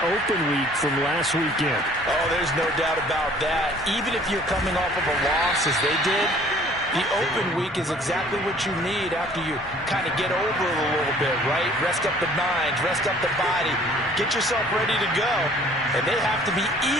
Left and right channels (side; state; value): both; normal; correlation 0.54